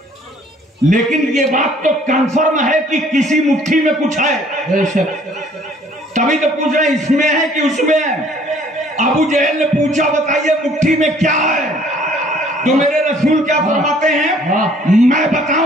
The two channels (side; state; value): both; normal; correlation 0.58